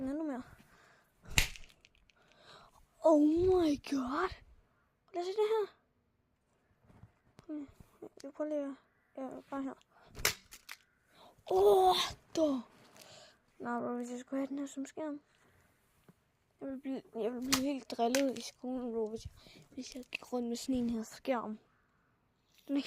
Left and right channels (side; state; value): both; identical; correlation 1.00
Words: endnu mere. Oh my god! Lad os se det her. Jeg prøver lige bare her. Da! Nej, bro, hvis jeg skulle have den her som skærm. Jeg ville blive helt drillet i skolen, bro, hvis jeg gik rundt med sådan en her skærm. Den er